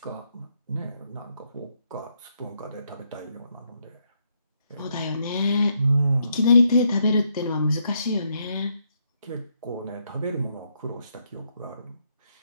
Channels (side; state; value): both; inverted; correlation -0.76